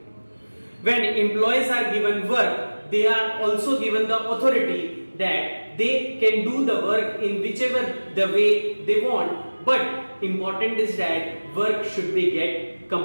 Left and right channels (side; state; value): both; inverted; correlation -1.00